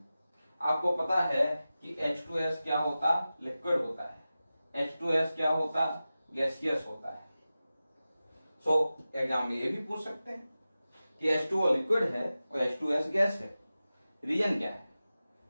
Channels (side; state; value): both; inverted; correlation -0.95